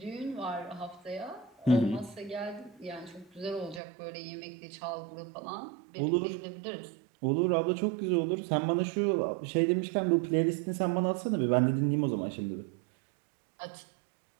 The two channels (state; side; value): drops out; left; at 3.8 s